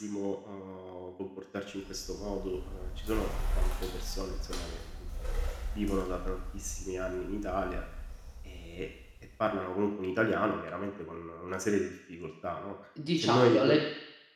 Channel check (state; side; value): identical; both; correlation 1.00